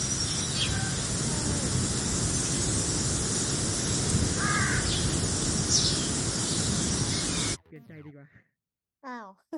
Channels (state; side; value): identical; both; correlation 1.00